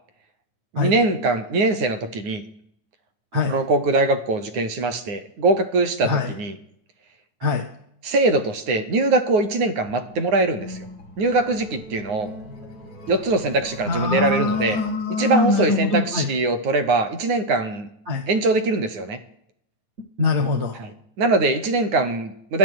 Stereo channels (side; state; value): left; late; 9.6 ms